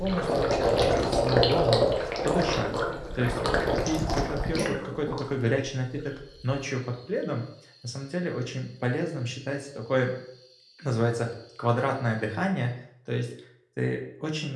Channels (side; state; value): both; identical; correlation 1.00